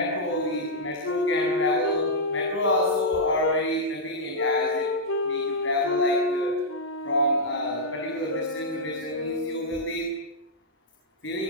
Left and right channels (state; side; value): normal; both; correlation -0.08